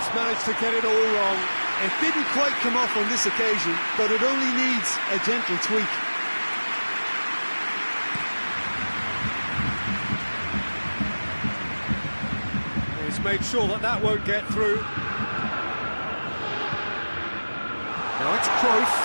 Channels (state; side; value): inverted; both; correlation -1.00